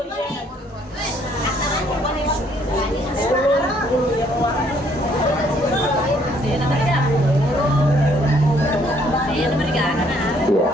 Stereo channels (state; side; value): normal; both; correlation 0.65